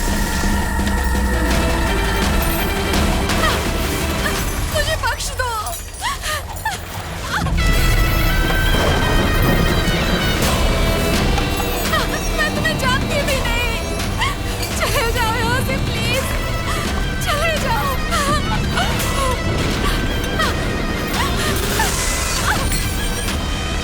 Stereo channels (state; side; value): identical; both; correlation 1.00